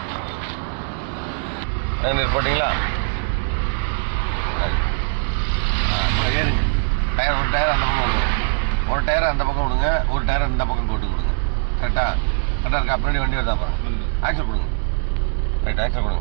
போட்டிங்களா? ஏறுங்க. டயர் ஒரு டயர் அந்த பக்கம் விடுங்க, ஒரு டயர் அந்த பக்கம் விடுங்க, ஒரு டயர் இந்த பக்கம் போட்டு கொடுங்க. கரெக்டாக இருக்கா? பின்னாடி வண்டி வருதா பாருங்க. ஆக்சல் கொடுங்க. ரைட், ஆக்சல்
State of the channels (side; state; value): left; silent; digital silence